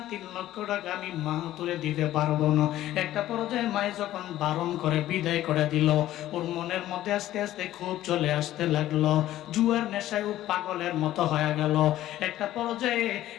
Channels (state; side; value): quieter; right; 13.9 dB